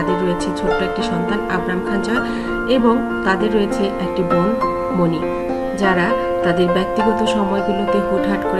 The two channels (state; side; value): identical; both; correlation 1.00